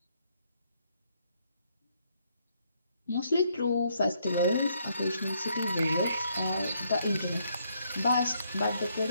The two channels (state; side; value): inverted; both; correlation -0.72